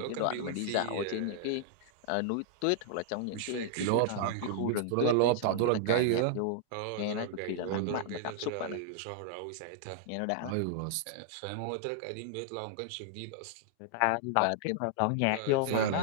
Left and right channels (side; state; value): both; different; correlation -0.01